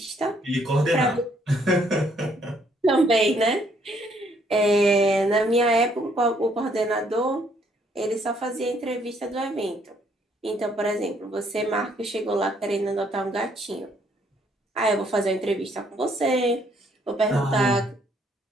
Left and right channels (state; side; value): normal; both; correlation 0.67